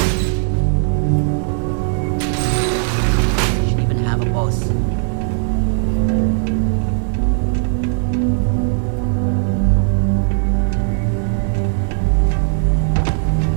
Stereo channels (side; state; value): left; silent; digital silence